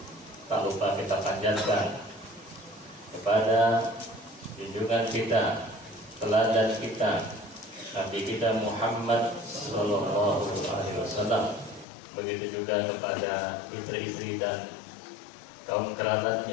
tak lupa kita panjatkan kepada junjungan kita, teladan kita, Nabi kita Muhammad sallallahu alaihi wasallam. Begitu juga kepada istri-istri dan kaum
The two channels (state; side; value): drops out; right; at 11.9 s